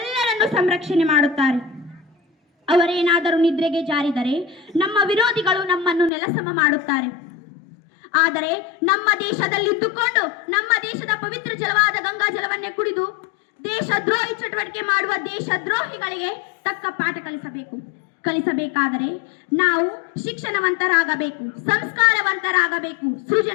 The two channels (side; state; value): right; drops out; at 6.1 s